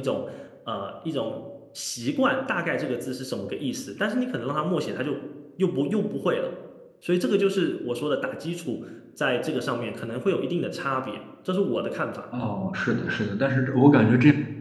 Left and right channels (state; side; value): identical; both; correlation 1.00